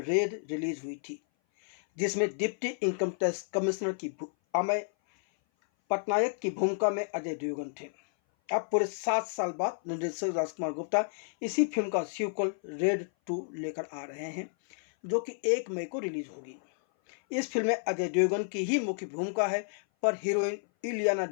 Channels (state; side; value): silent; right; 56 dB below the other